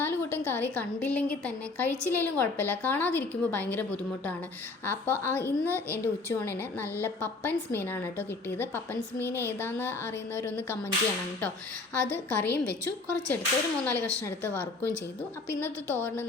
കൂട്ടം കറി കണ്ടില്ലെങ്കിൽ തന്നെ കഴിച്ചില്ലെങ്കിലും കുഴപ്പമില്ല, കാണാതിരിക്കുമ്പോൾ ഭയങ്കര ബുദ്ധിമുട്ടാണ്. അപ്പോൾ ഇന്ന് എൻ്റെ ഉച്ചയൂണിന് നല്ല പപ്പൻസ് മീനാണ് കേട്ടോ കിട്ടിയത്. പപ്പൻസ് മീൻ ഏതാണെന്ന് അറിയുന്നവരൊന്ന് കമൻറ്റ് ചെയ്യണം കേട്ടോ. അത് കറിയും വെച്ചു, കുറച്ചെടുത്ത് ഒരു 3-4 കഷ്ണം എടുത്ത് വറുക്കുകയും ചെയ്തു. അപ്പോൾ ഇന്നത്തെ തോരന്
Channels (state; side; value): quieter; right; 3.6 dB